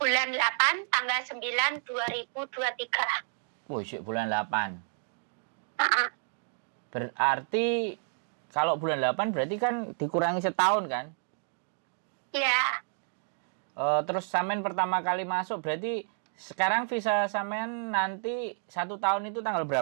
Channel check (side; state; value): left; silent; digital silence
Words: 8 tanggal 9 2023. Wih, bulan 8. Uh-uh. Berarti kalau bulan 8 berarti kan dikurangi setahun kan? Iya. Terus sampean pertama kali masuk berarti sekarang visa sampean nanti 1 tahun itu tanggal